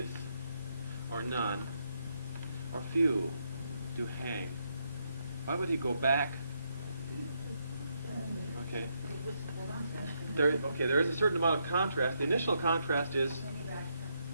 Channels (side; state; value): both; inverted; correlation -0.78